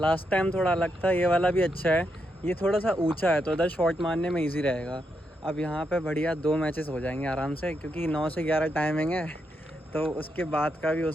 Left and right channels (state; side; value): normal; both; correlation 0.82